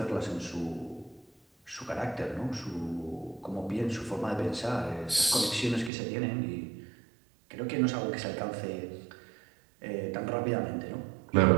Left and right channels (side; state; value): left; drops out; at 5.9 s